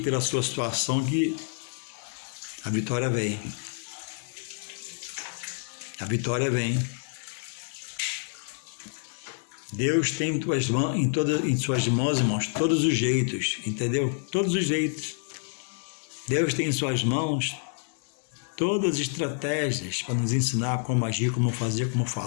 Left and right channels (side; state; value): right; silent; 59 dB below the other